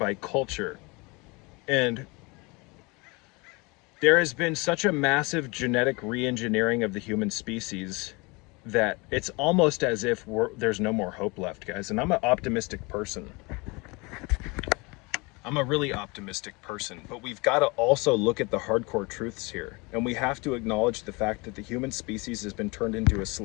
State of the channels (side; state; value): right; quieter; 26.7 dB